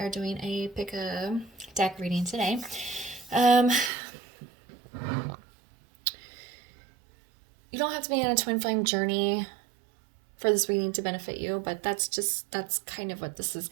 are doing a pick a deck reading today. You don't have to be on a twin flame journey for this reading to benefit you, but that's kind of what this is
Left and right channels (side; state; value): left; drops out; at 3.9 s